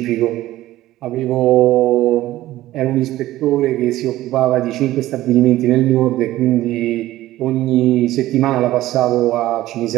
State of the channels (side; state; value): left; quieter; 15.6 dB